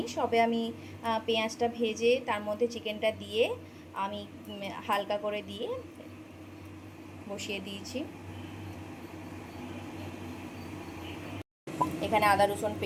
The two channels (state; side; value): identical; both; correlation 1.00